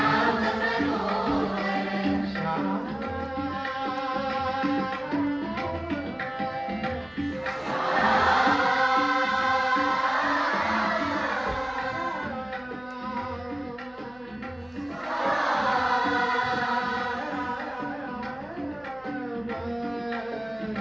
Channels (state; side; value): noise; left; hum, 29 dB below the sound